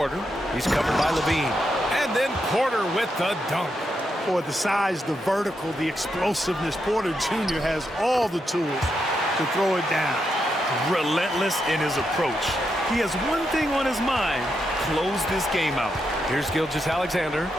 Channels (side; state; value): both; normal; correlation 0.83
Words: He's covered by LaVine. And And then Porter with the dunk. Boy, the size, the vertical, the explosiveness, Porter Jr. has all the tools to throw it down. Relentless in his approach. He has one thing on his mind: close this game out. Here's Gilgeous-Alexander.